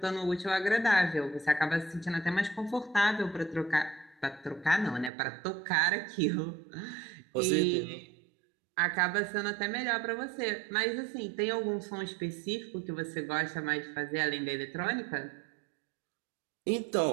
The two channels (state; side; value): drops out; left; at 5.1 s